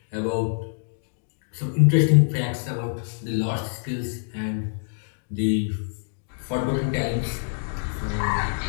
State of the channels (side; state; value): right; silent; digital silence